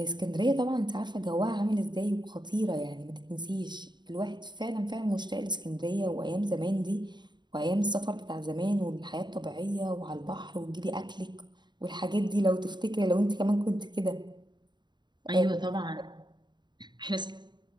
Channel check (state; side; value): late; left; 0.22 ms